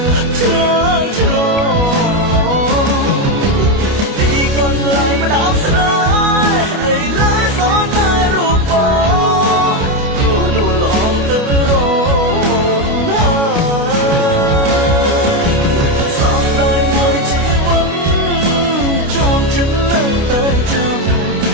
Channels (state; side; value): late; left; 29 ms